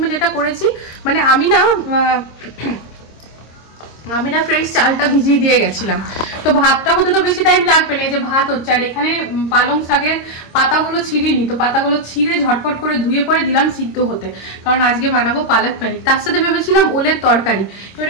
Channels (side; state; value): right; late; 26 ms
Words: যেটা করেছি, মানে আমি না ফ্রেন্ডস চালটা ভিজিয়ে দিয়ে গেছিলাম, তো ভাতটা হতে তো বেশি টাইম লাগবে না, যে ভাত হচ্ছে। আর এখানে পালং শাকের পাতাগুলো ছিঁড়িনি, তো পাতাগুলো ছিঁড়ে ঝটপট করে ধুয়ে পরে দিলাম সিদ্ধ হতে, কারণ আজকে বানাবো পালক পনির। তার সাথে ভেবেছিলাম ওলের তরকারি। এবার